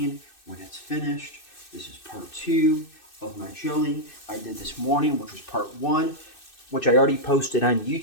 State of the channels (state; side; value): late; right; 2.6 ms